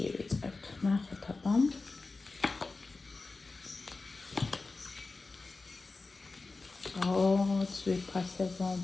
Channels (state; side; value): quieter; right; 3.7 dB